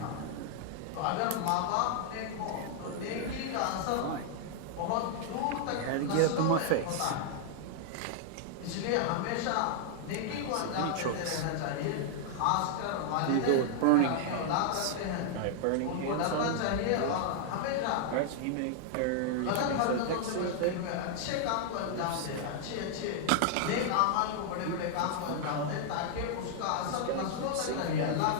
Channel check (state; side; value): different; both; correlation 0.00